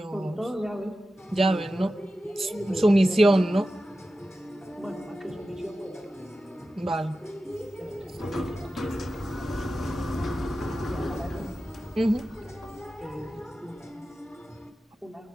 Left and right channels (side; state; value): both; normal; correlation 0.93